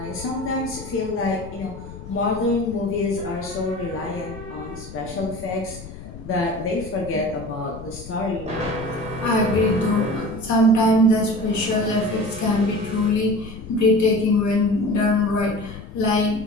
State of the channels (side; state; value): left; noise; rumble, 14 dB below the sound